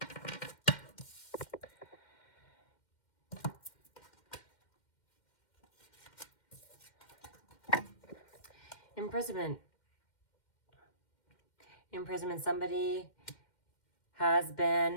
Imprisonment. Imprisonment. Somebody has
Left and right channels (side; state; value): right; late; 2.1 ms